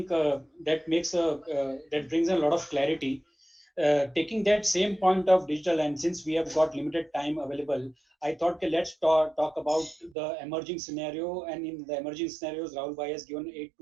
that brings a lot of clarity. Taking that same point of digital, and since we have got limited time available, I thought, okay, let's talk about the emerging scenario. And in the emerging scenarios, Rahul bhai has given 8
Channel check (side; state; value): left; drops out; at 10.2 s